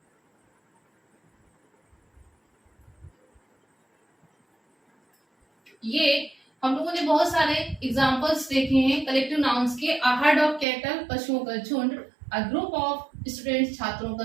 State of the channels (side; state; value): left; drops out; at 10.7 s